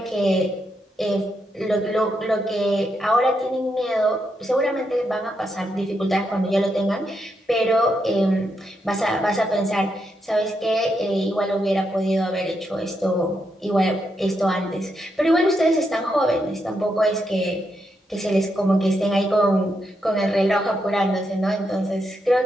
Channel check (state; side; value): normal; both; correlation 0.82